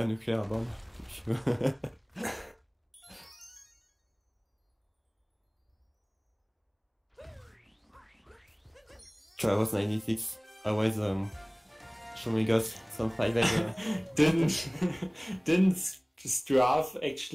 nuclear bomb. Travis 96 always showing us some 5 Didn't Straff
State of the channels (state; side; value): identical; both; correlation 1.00